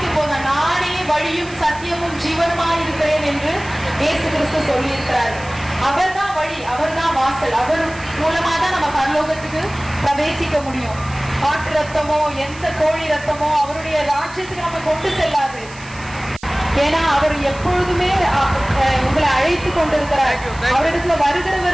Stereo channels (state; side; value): noise; right; hiss, 20 dB below the sound